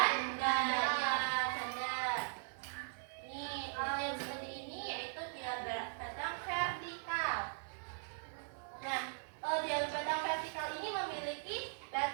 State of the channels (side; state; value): left; silent; 51 dB below the other